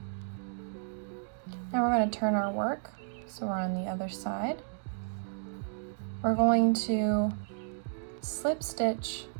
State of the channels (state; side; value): silent; left; digital silence